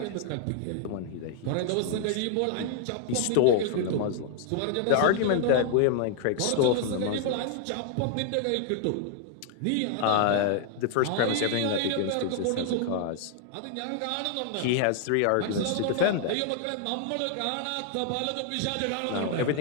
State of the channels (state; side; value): different; both; correlation 0.00